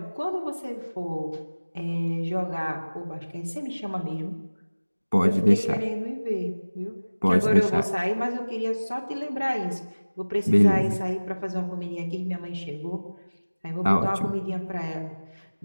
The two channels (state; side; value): inverted; both; correlation -1.00